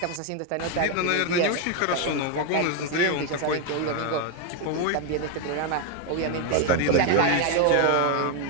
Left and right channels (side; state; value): both; different; correlation 0.01